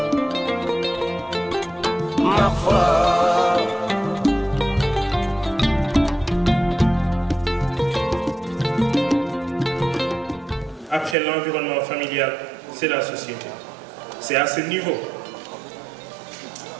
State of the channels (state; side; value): drops out; left; at 11.2 s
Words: Après l'environnement familial, c'est la société. C'est à ce niveau